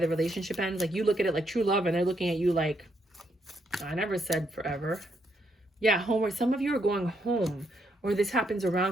relationship ends. Like you look at it like true love, and they're looking at you like, I never said forever. Yeah, home, or some of you are going home, or this happens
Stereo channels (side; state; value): both; normal; correlation 0.76